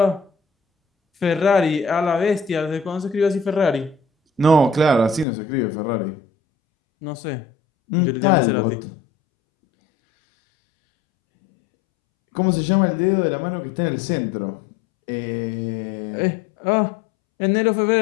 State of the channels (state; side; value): drops out; right; at 5.2 s